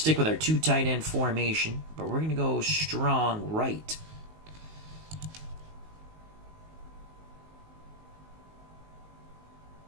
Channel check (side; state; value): left; late; 19 ms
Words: with our 2 tight end formation, but we're going to go strong right.